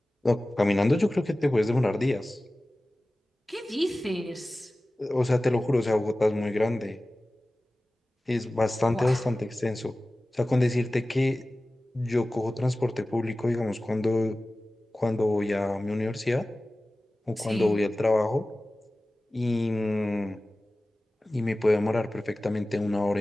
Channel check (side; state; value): both; normal; correlation 0.97